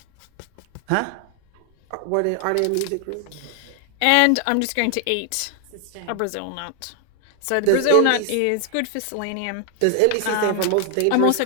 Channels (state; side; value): different; both; correlation 0.00